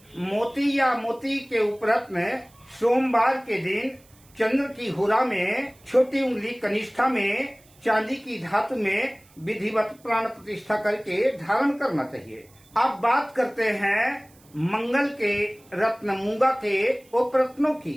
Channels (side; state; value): right; noise; hiss, 29 dB below the sound